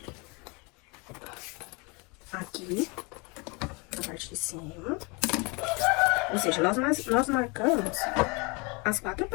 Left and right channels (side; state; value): right; quieter; 29.4 dB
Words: Aqui, na parte de cima. Ou seja, nós marcamos as 4